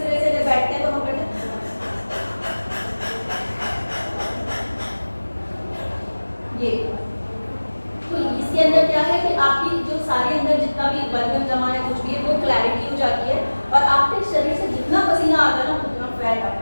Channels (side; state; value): both; inverted; correlation -1.00